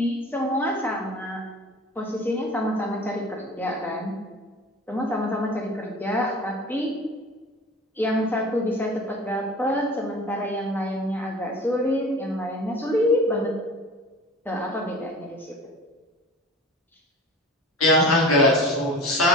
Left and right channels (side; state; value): both; normal; correlation 0.39